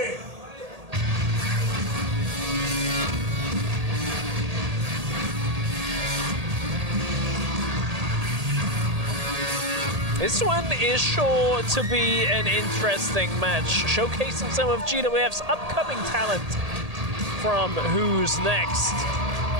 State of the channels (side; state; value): left; late; 1.8 ms